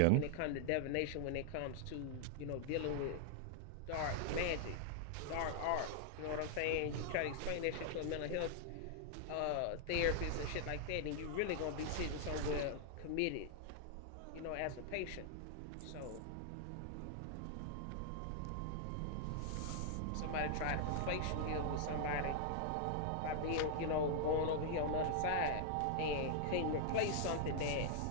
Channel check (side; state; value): both; different; correlation -0.01